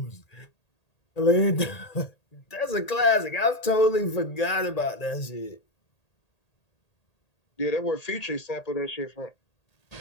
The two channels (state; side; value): late; right; 1.8 ms